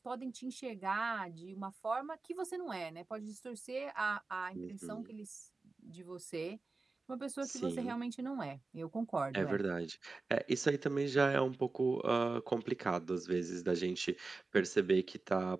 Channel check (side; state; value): left; quieter; 3.7 dB